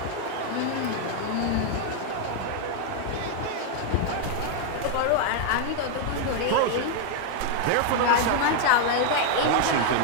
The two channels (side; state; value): both; different; correlation 0.00